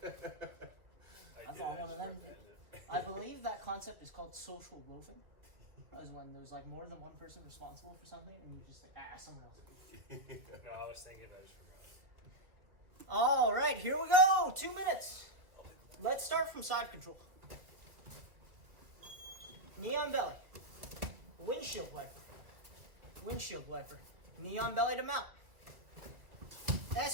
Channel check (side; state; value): left; late; 1.4 ms